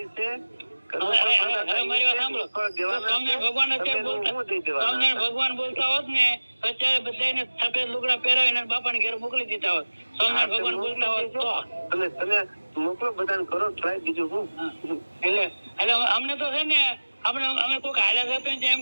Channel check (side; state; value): both; inverted; correlation -1.00